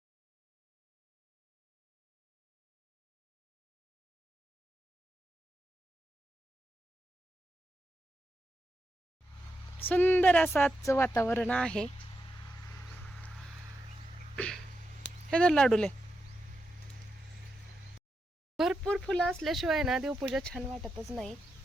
सुंदर असं आजचं वातावरण आहे. हे तर लाडूले भरपूर फुलं असल्याशिवाय ना देवपूजा छान वाटतच नाही.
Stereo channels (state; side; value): normal; both; correlation 0.86